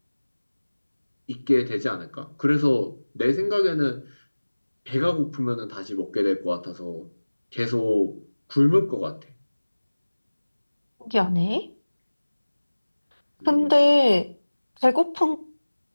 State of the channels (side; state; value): both; inverted; correlation -1.00